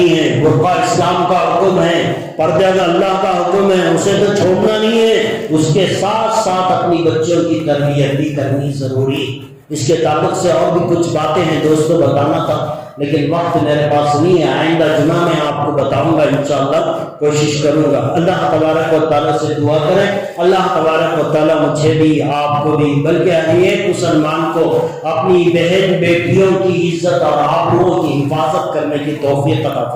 ہے, برقع اسلام کا حکم ہے, پردہ کا اللہ کا حکم ہے, اسے تو چھوڑنا نہیں ہے, اس کے ساتھ ساتھ اپنی بچوں کی تربیت بھی کرنی ضروری. اس کے تعلق سے اور بھی کچھ باتیں ہیں دوستوں بتانا تھا, لیکن وقت میرے پاس نہیں ہے. آئندہ جمعہ میں آپ کو بتاؤں گا انشاءاللہ, کوشش کروں گا. اللہ تبارک و تعالیٰ سے دعا کریں, اللہ تبارک و تعالیٰ مجھے بھی آپ کو بھی بلکہ ہر ایک مسلمان کو اپنی بہن بیٹیوں کی عزت اور آبرو کی حفاظت کرنے کی توفیق عطا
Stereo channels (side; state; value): both; identical; correlation 1.00